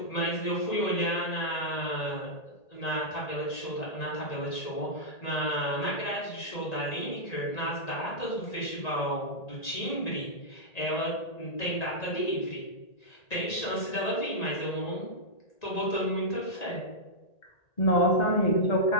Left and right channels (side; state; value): right; late; 1.9 ms